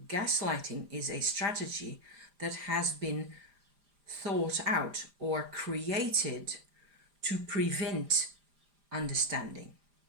gaslighting is a strategy that has been thought out or created to prevent understanding.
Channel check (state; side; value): late; left; 4.9 ms